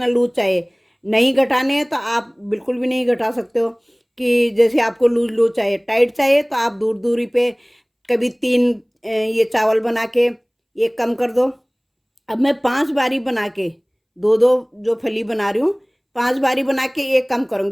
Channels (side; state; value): both; identical; correlation 1.00